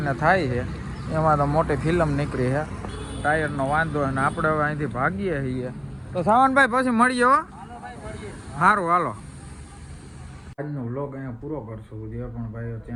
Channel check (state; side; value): identical; both; correlation 1.00